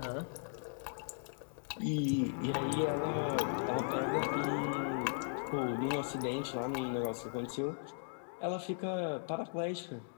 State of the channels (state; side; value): silent; right; digital silence